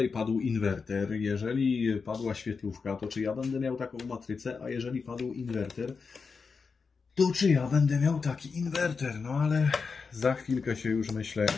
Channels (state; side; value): quieter; right; 5.1 dB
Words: padł inwerter. Jeżeli padła świetlówka, to czy ja będę miał taką matrycę, a jeżeli padł inwerter, to czy ja będę miał taki inwerter. No ale za chwilkę się już, myślę,